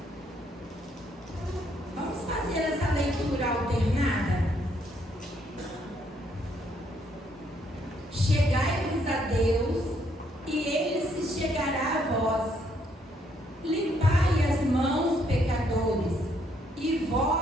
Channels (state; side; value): normal; both; correlation 0.71